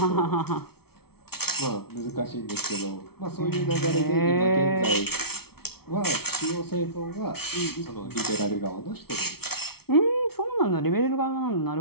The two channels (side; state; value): right; late; 0.95 ms